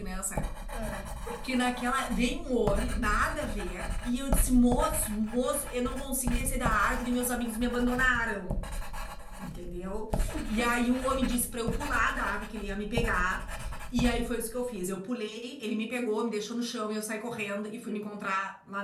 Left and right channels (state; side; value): identical; both; correlation 1.00